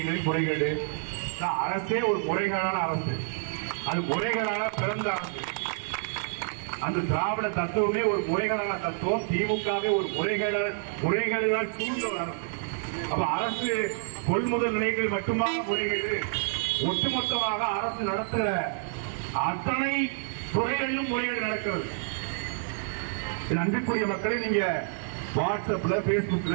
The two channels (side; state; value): left; silent; 56 dB below the other